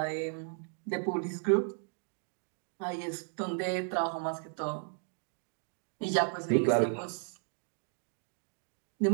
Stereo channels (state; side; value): silent; left; 55 dB below the other